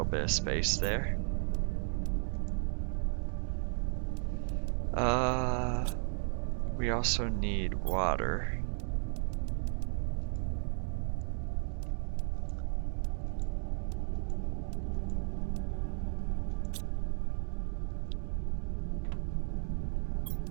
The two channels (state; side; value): silent; left; 55 dB below the other